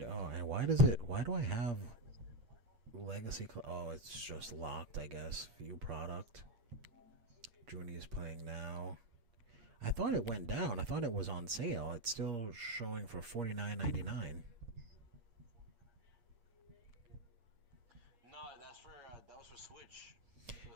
Oh, and why do I have Legacy? Oh, it's just locked, I guess. View product. Junie is playing now. I thought it went down. I thought it was on sale. It's still showing for $49.99. No, that was for Switch. For the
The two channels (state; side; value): late; left; 8.5 ms